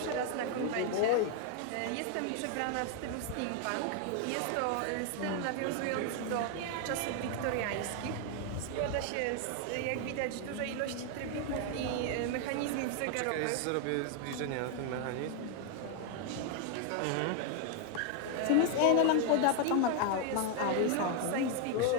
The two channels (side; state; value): both; different; correlation 0.00